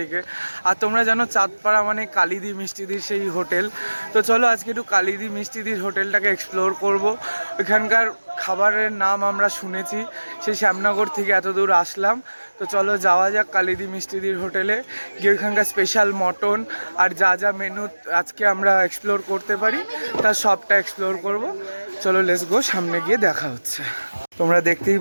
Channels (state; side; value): inverted; both; correlation -1.00